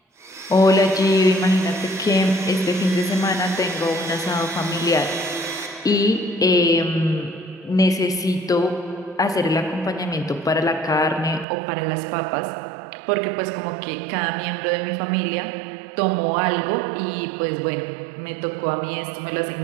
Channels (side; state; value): left; drops out; at 11.5 s